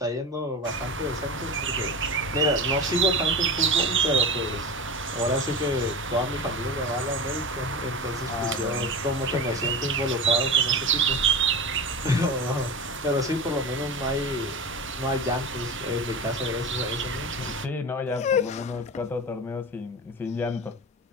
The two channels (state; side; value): normal; both; correlation 0.27